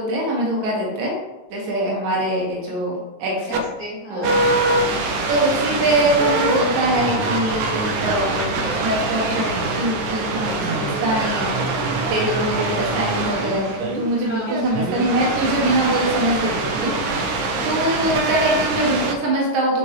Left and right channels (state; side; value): late; left; 12 ms